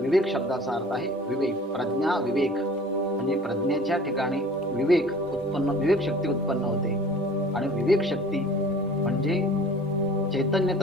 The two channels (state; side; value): normal; both; correlation 0.45